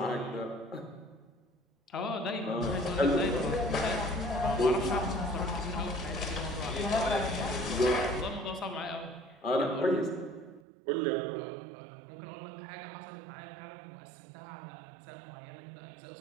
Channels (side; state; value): left; drops out; at 10.6 s